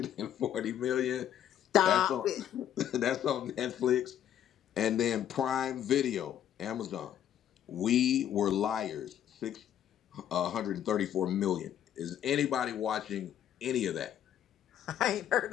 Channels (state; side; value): quieter; right; 10.5 dB